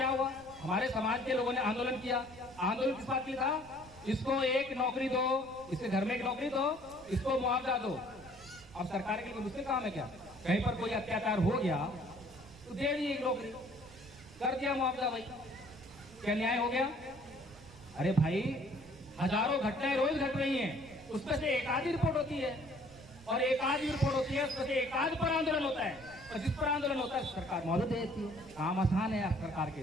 हुआ? हमारे समाज के लोगों ने आंदोलन किया। आंदोलन किस बात के लिए था? इसको एक नौकरी दो, इसके घर में एक नौकरी दो, इसको मुआवजा दो। अब सरकार के लिए मुश्किल काम है क्या? कहीं पर कोई अत्याचार हो गया तो दे दी एक नौकरी, कर दिया मुआवजा, भाई क्या न्याय हो गया? अरे भाई हजारों घटनाएं रोज घट रही हैं, उसमें से एक आधी रिपोर्ट होती है, और एक आधी रिपोर्ट होती है, उसमें से एक आध पर आंदोलन होता है, और जिस पर आंदोलन होता है सरकार मौजूद देती है। काम आसान है सरकार के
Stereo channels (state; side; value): noise; right; rumble, 21 dB below the sound